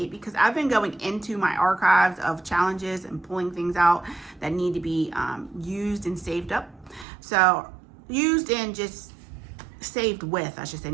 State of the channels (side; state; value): left; drops out; at 7.1 s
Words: because I've been going into my archives of challenges and pulling things out that need to be used and saved up. So used and just saved with, I should say,